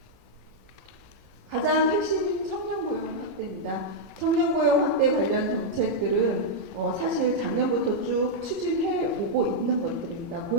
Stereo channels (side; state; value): both; normal; correlation -0.04